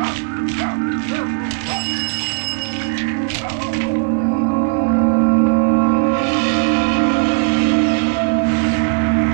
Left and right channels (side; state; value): left; quieter; 39.5 dB